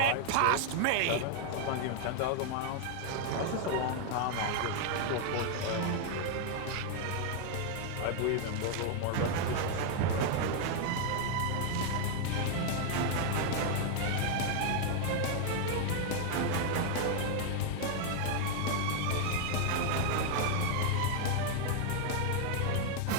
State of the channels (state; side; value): different; both; correlation 0.00